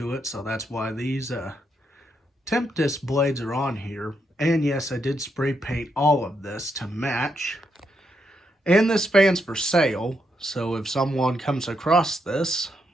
it, so that's why these Tempest blades are on here. And yes, I did spray paint all of this to match. And this fan's for sale, so if someone comes across this,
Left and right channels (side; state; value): both; normal; correlation 0.80